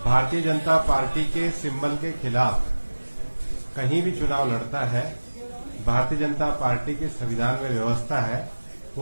भारतीय जनता पार्टी के सिंबल के खिलाफ कहीं भी चुनाव लड़ता है, भारतीय जनता पार्टी के संविधान में व्यवस्था है,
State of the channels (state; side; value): inverted; both; correlation -1.00